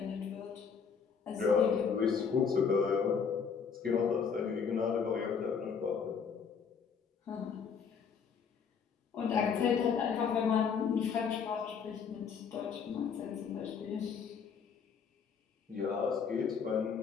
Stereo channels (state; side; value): quieter; right; 6.4 dB